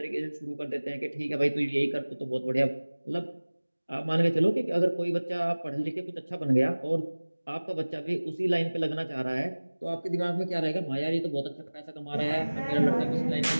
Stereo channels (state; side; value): inverted; both; correlation -1.00